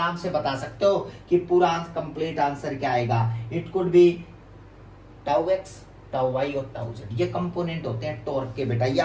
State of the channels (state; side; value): identical; both; correlation 1.00